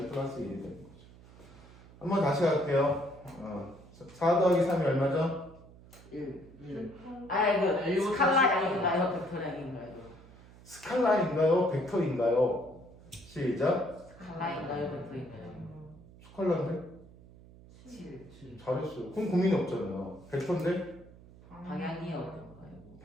플러스 1이 되는 거죠. 한번 다시 할게요. 4 더하기 3이 얼마죠? 1. 이거 스칼라량인가요? 벡터량인가요? 스칼라인가요? 벡터인가요? 시작. 스칼라인가요? 벡터인가요? 스칼라인데? 7. 잘했어요. 그럼 고민이 없잖아요. 벡터인데? 방향이요?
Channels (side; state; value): right; noise; hum, 21 dB below the sound